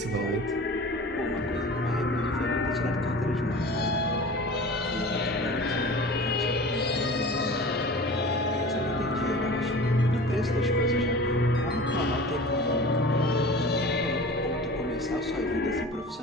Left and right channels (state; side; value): normal; both; correlation 0.38